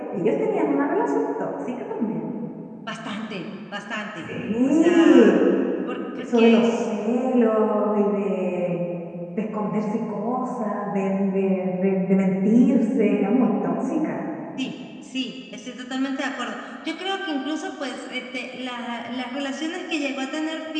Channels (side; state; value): both; identical; correlation 1.00